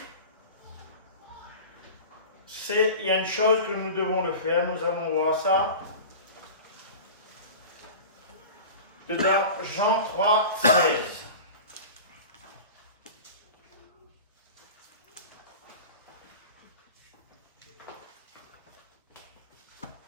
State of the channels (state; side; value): inverted; both; correlation -0.34